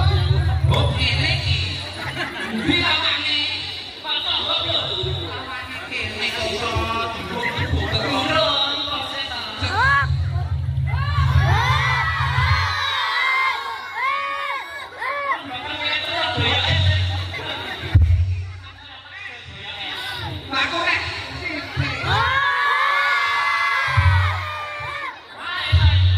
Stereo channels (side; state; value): both; identical; correlation 1.00